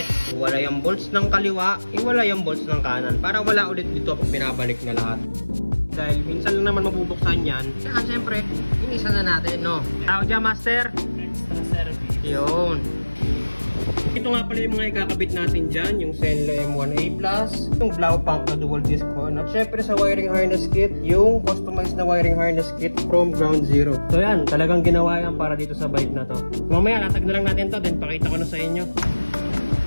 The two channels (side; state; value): both; inverted; correlation -1.00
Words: Iwala yung bolts ng kaliwa, iwala yung bolts ng kanan. Para wala ulit dito pag pinabalik na lahat. Dahil minsan lang naman mabubuksan yan. Kaya siyempre, inisa na natin, no? Tao dyan, Master? Extra service. Yun. Ito nga pala yung mga ikakabit natin dyan, yung Zenlo M1A+, yung Blaupunk na dual disc horn, at syempre sa wiring harness kit, yung customized na wiring harness kit from ground zero. So yan, talagang ginawa yan para dito sa bike na to. Mamaya, latag na lang natin to, then pakita ko na sa inyo.